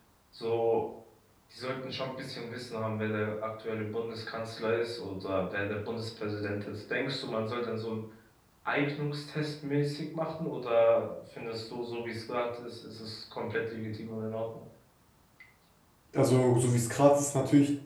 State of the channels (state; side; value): identical; both; correlation 1.00